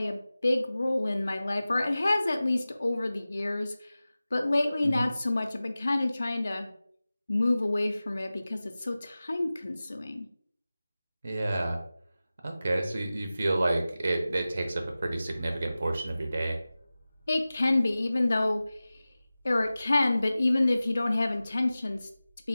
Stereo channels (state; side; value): inverted; both; correlation -0.96